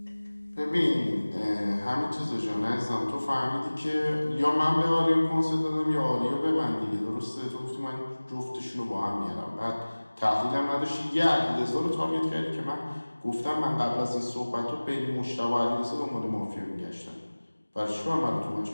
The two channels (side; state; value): both; inverted; correlation -1.00